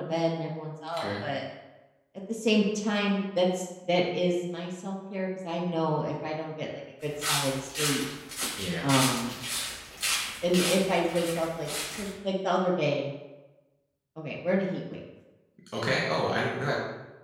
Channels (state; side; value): identical; both; correlation 1.00